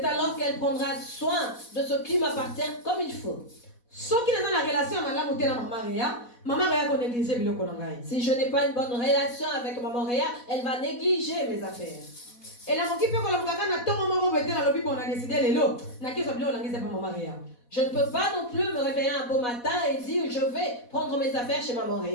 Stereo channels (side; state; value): right; late; 4.1 ms